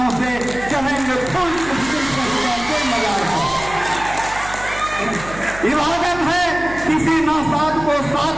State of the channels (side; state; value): right; noise; hum, 14 dB below the sound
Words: से, कहेंगे फूल के मजार पर। इबादत है किसी नासाद को साथ